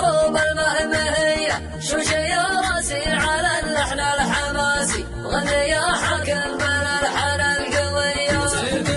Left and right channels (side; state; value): both; identical; correlation 1.00